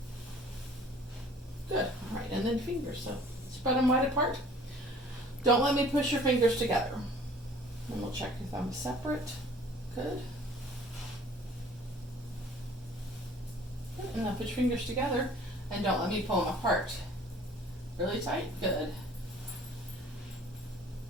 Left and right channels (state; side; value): normal; both; correlation 0.52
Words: Good. All right. And then fingers. So spread them wide apart. Don't let me push your fingers together. And we'll check your thumbs separate. Good. Good. And now put your fingers together. And don't let me pull them apart. Really tight. Good.